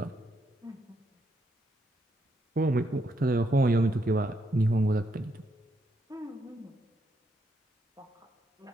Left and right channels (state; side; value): normal; both; correlation 0.77